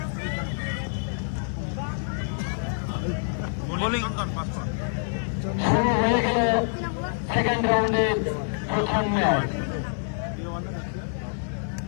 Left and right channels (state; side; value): silent; right; digital silence